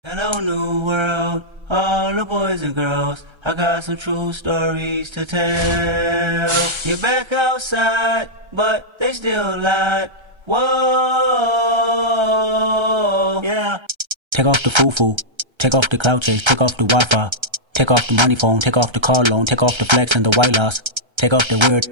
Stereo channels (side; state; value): left; late; 1.3 ms